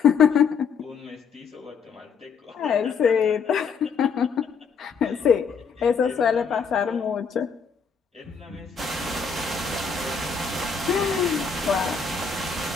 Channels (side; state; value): right; quieter; 5.9 dB